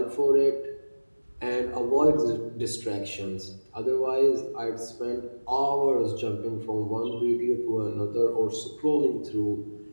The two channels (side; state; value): both; inverted; correlation -1.00